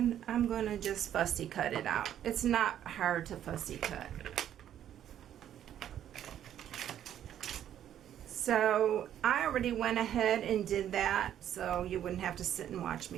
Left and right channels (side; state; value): left; quieter; 10.6 dB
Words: I'm going to just fussy cut it out. It's not hard to fussy cut. So I already went ahead and did that, so you wouldn't have to sit and watch